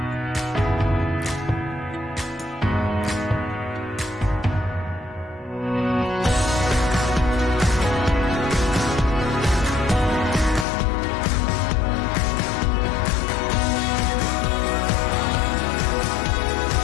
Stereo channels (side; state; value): right; drops out; at 10.7 s